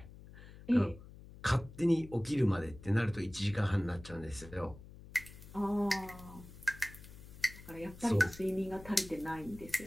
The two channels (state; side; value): noise; left; hum, 17 dB below the sound